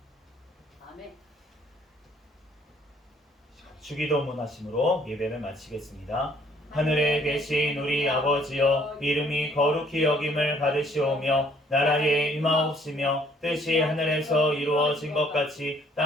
아멘. 주기도문 하심으로 예배를 마치겠습니다. 하늘에 계신 우리 아버지여 이름이 거룩히 여김을 받으시오며 나라에 임하옵시며 뜻이 하늘에서 이루어진 것 같이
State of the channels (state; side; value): normal; both; correlation 0.62